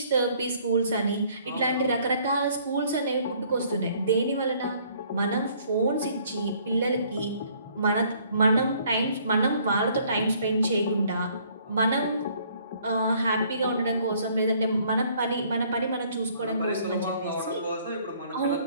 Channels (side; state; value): both; inverted; correlation -0.61